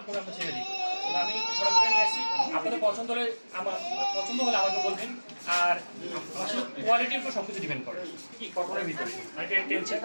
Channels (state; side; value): inverted; both; correlation -1.00